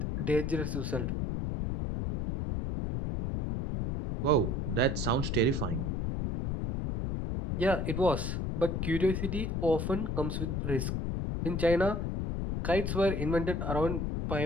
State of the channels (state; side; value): noise; left; rumble, 1 dB below the sound